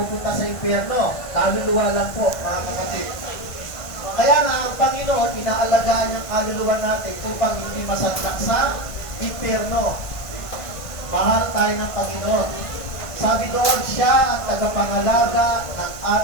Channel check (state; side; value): late; right; 1.5 ms